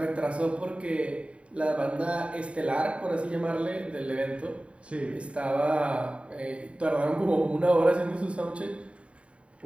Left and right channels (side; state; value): left; late; 0.061 ms